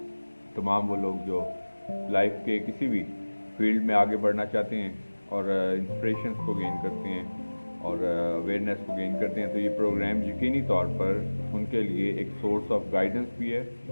तमाम वो लोग जो लाइफ के किसी भी फील्ड में आगे बढ़ना चाहते हैं और इंस्पिरेशंस को गेन करते हैं और अवेयरनेस को गेन करते हैं, तो ये प्रोग्राम यकीनी तौर पर उनके लिए एक सोर्स ऑफ गाइडेंस भी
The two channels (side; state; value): both; inverted; correlation -1.00